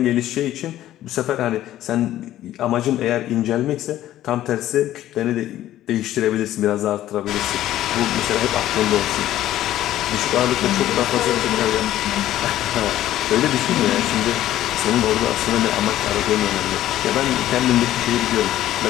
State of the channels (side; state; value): right; quieter; 13.3 dB